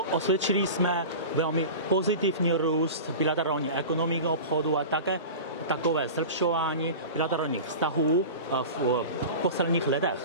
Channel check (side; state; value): both; inverted; correlation -0.32